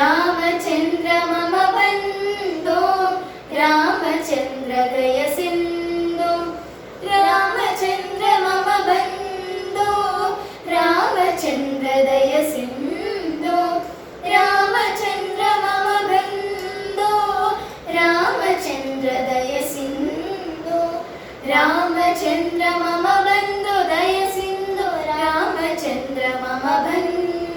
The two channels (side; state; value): both; identical; correlation 1.00